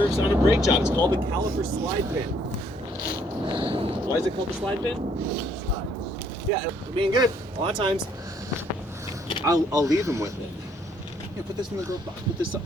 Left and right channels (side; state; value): both; normal; correlation 0.67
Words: on a brake job. It's called the caliper slide pin. Why is it called the slide pin? Yeah, being good. A lot of times, I'll leave them with it. Yeah, put this in the glove box. Put this up.